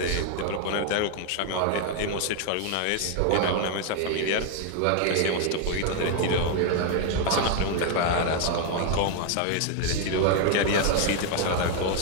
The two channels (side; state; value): both; different; correlation 0.01